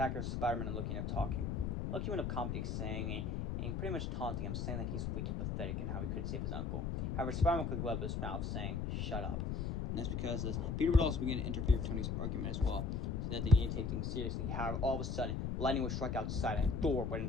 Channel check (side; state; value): left; noise; rumble, 1 dB below the sound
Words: Spider-Man and Loki end up talking. Loki went up commenting, saying, and pretty much taunting him, saying that he's weak and pathetic and how he couldn't save his uncle. However, Spider-Man quickly wiped his mouth, saying, "Shut up." And that's because Peter would also begin to interfere with Tony's argument as well, so that they need to take things seriously. However, all of a sudden, lightning would strike outside, and Thor would